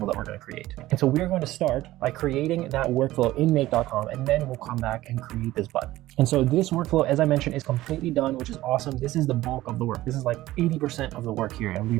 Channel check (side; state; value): left; quieter; 16.2 dB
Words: that we're going to create. And so we're going to start by creating that workflow in make.com, and then we'll come back and create this button. And so this workflow, as I mentioned, is completely done, which is awesome. This is the bulk of the work. This is like 80% of the work here, and